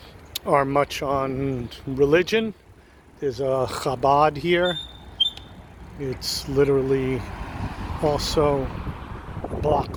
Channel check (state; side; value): identical; both; correlation 1.00